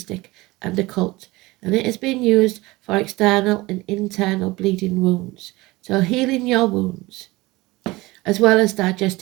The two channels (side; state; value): left; quieter; 21.0 dB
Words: and occult, and it has been used for external and internal bleeding wounds, so healing your wounds, as well as